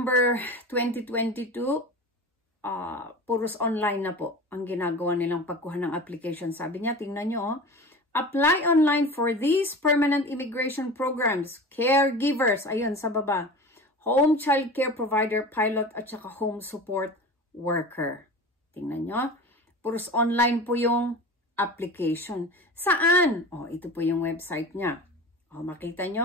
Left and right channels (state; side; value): normal; both; correlation 0.34